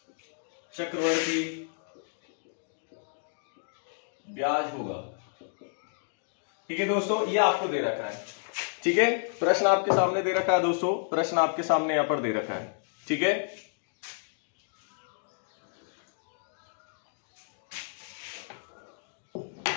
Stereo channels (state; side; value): silent; right; digital silence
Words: चक्रवर्ती ब्याज होगा। ठीक है दोस्तों, ये आपको दे रखा है। ठीक है, प्रश्न आपके सामने दे रखा है दोस्तों, प्रश्न आपके सामने यहां पर दे रखा है। ठीक है,